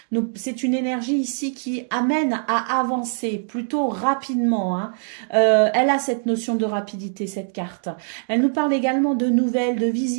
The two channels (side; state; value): left; silent; digital silence